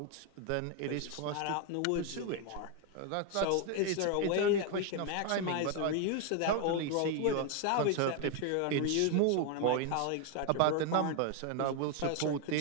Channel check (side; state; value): both; different; correlation 0.01